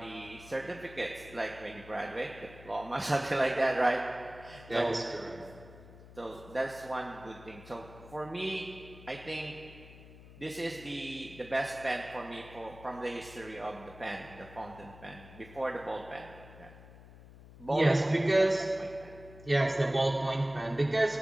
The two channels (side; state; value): left; noise; hum, 18 dB below the sound